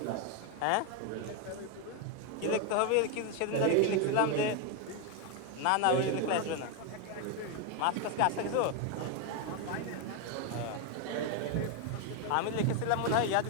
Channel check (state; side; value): different; both; correlation 0.01